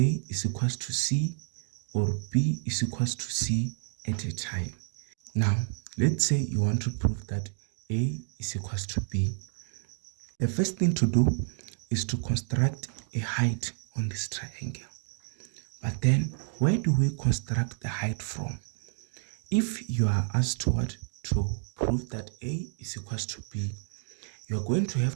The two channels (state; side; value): silent; left; 58 dB below the other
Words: is equals to C, or B is equals to C at a time. Now, let's say you want to prove that A is equals to B. The first thing to do is to construct a height on this triangle. But then, where do we construct the height from? If you are asked to what? To prove that A is equals to B, you are going to